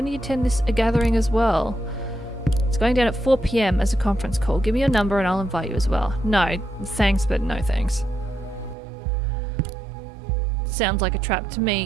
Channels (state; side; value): drops out; left; at 8.8 s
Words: you attend a gathering as well? It's going down at 4 PM as a conference call. Give me your number and I'll invite you as well. No, thanks, but no thanks. Sounds like a trap to me.